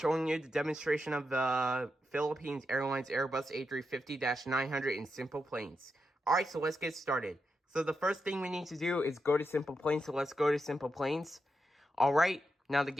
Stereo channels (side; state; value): both; normal; correlation 0.86